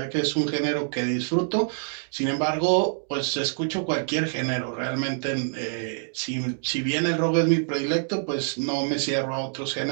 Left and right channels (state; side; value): silent; left; digital silence